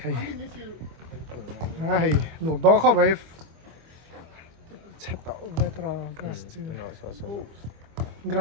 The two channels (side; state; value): left; late; 25 ms